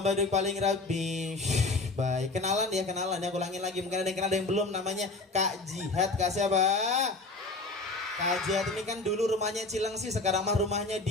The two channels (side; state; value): right; quieter; 3.3 dB